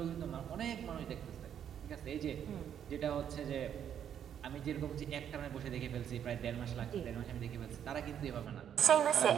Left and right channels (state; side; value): quieter; left; 9.1 dB